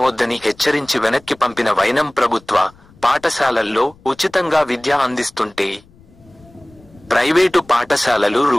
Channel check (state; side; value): noise; left; rumble, 27 dB below the sound